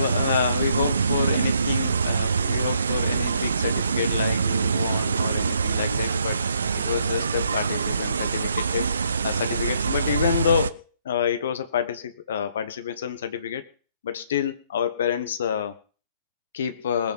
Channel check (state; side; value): inverted; both; correlation -0.68